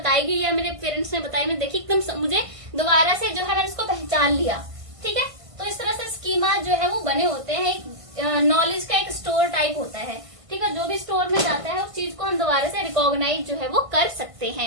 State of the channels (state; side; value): late; left; 1.5 ms